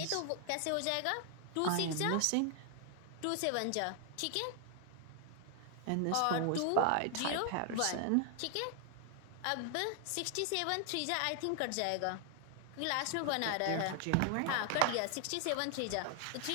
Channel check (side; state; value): both; different; correlation 0.00